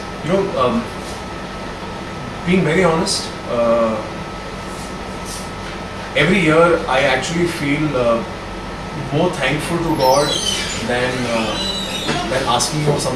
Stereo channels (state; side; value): identical; both; correlation 1.00